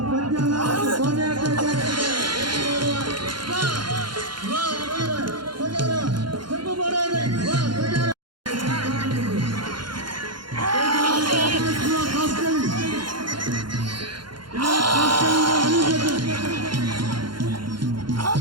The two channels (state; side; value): late; left; 0.72 ms